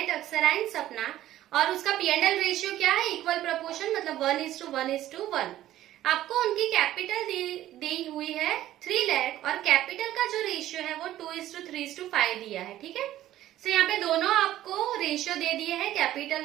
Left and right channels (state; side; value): quieter; left; 13.6 dB